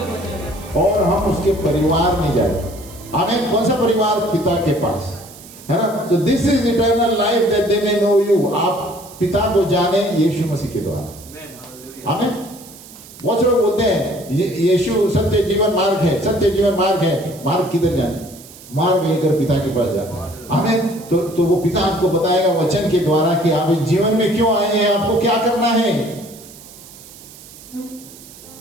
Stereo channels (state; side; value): noise; right; hiss, 19 dB below the sound